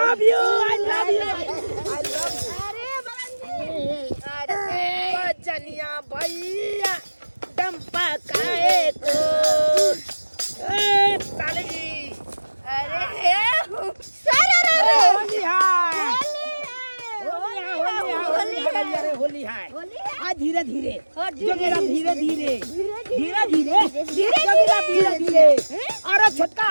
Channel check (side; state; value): both; inverted; correlation -1.00